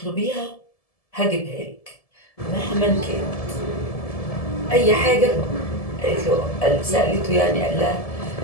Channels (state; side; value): late; right; 1.7 ms